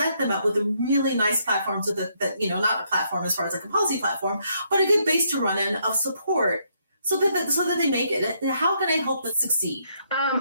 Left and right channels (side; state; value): both; inverted; correlation -0.73